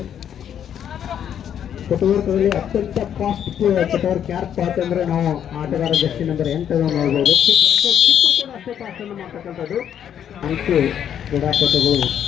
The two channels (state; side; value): quieter; right; 9.3 dB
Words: ಫುಟ್ವರ್ಕ್ಗಳಲ್ಲಿ ಅತ್ಯಂತ ಫಾಸ್ಟ್ ಫುಟ್ವರ್ಕ್ ಯಾರಪ್ಪ ಅಂತಂದ್ರೆ ನಾವು ಆಟಗಾರ ಜರ್ಸಿ ನಂಬರ್ 8 ನೋಡ್ಬೋದು. ಕೂಡ ಅಷ್ಟೇ ಫಾಸ್ಟ್ ಅನ್ನು ಮಾಡ್ತಕ್ಕಂಥದ್ದು. 4 ಕ್ರೀಡಾಪಟುಗಳು